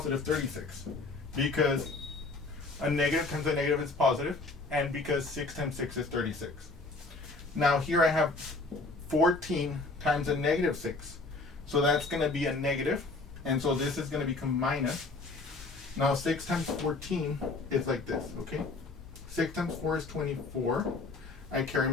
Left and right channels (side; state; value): right; quieter; 3.5 dB